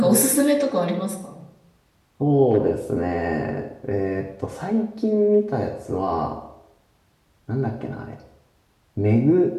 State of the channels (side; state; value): both; identical; correlation 1.00